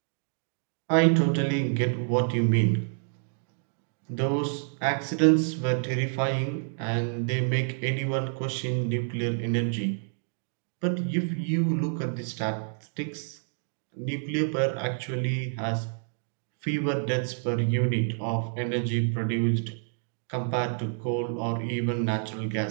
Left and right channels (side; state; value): left; silent; digital silence